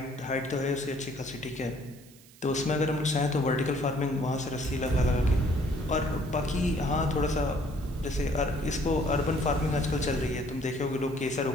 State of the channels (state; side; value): noise; right; hiss, 24 dB below the sound